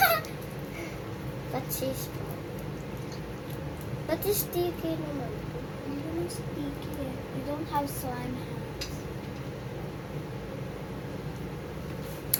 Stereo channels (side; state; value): both; identical; correlation 1.00